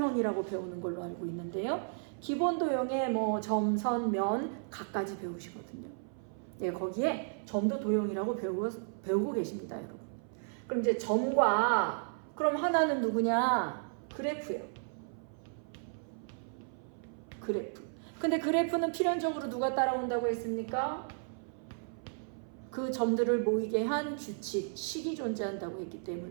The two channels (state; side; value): silent; left; 55 dB below the other